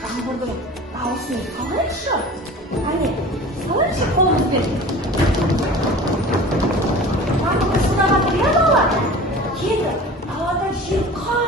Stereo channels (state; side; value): normal; both; correlation 0.39